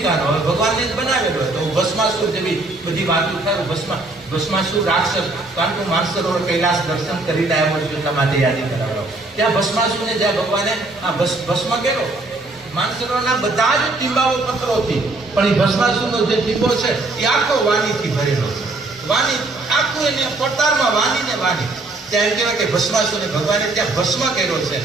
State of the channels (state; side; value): quieter; left; 3.1 dB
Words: હવે ભગવાનને જ બનાવેલો તો ભસ્માસુર જેવી બધી વાતો થાય. ભસ્માસુર રાક્ષસ કાંટુ માનસરોવર કૈલાસ દર્શન કરીને આવ્યો છું એટલા માટે યાદી કરાવડો. ત્યાં ભસ્માસુરને જ્યાં ભગવાને ભસ્મ કર્યો, માનસરોવરના બધા જ ટીંબાઓ પથ્થરોથી, પણ એ ભસ્માસુરનો જે ટીંબો છે એ આખો વાણીથી ભરેલો છે. વાણી આખું એને પડતારમાં વાણીને વાણી. ત્યાં એમ કહેવાય કે ભસ્માસુરને ભગવાને ત્યાં ભસ્મ કર્યો છે